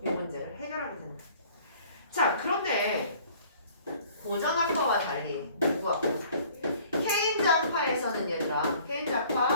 이 문제를 해결하게 된다. 자, 그런데 고전학파와 달리 누구학파? 케인즈학파에서는 얘들아,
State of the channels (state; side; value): inverted; both; correlation -0.53